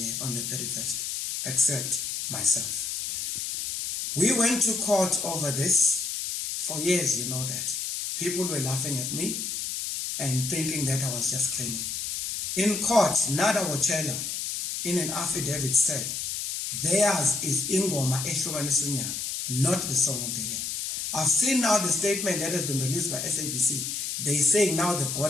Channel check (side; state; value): left; noise; hiss, 3 dB below the sound